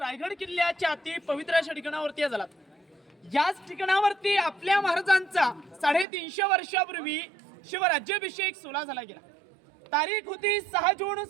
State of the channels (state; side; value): drops out; left; at 6.1 s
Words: किल्ल्याच्या अति पवित्र अशा ठिकाणावरती आलात. याच ठिकाणावरती आपल्या महाराजांचा 350 वर्षापूर्वी शिवराज्याभिषेक सोहळा झाला गेला. तारीख होती 6 जून